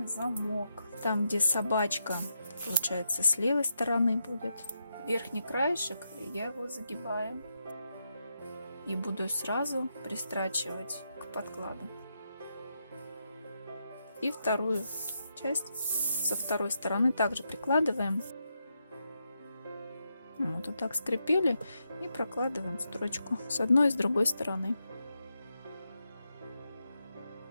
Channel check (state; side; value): inverted; both; correlation -0.84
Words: замок. Там, где собачка, получается, с левой стороны будет. Верхний краешек, я его загибаю. И буду сразу пристрачивать к подкладу. И вторую часть со второй стороны также прикладываем. Вот так скрепили и прокладываем строчку с одной и с другой стороны.